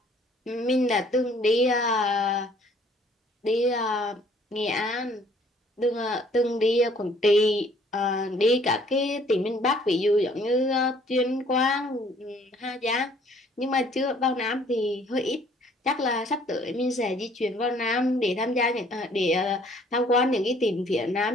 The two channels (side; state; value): both; normal; correlation 0.59